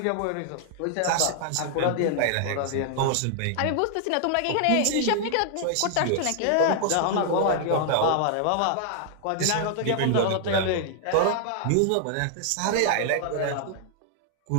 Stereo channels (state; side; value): different; both; correlation 0.00